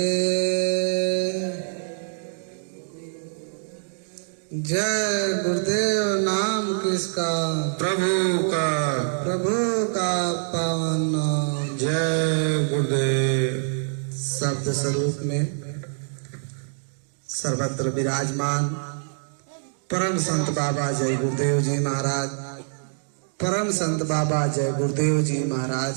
जय गुरुदेव नाम किसका? प्रभु का। प्रभु का पावन नाम। जय गुरुदेव। शब्द स्वरूप में सर्वत्र विराजमान परम संत बाबा जय गुरुदेव जी महाराज, परम संत बाबा जय गुरुदेव जी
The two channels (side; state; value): left; silent; digital silence